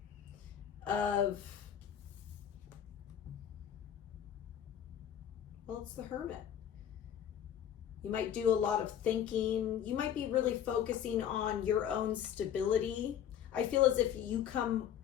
of, well, it's the Hermit. You might do a lot of thinking. You might be really focusing on your own stability. I feel as if you come,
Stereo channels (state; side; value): quieter; right; 9.7 dB